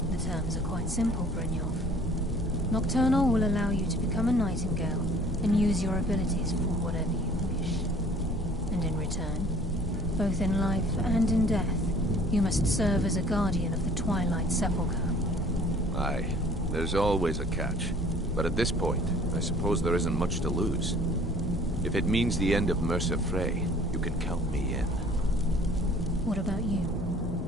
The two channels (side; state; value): both; normal; correlation 0.52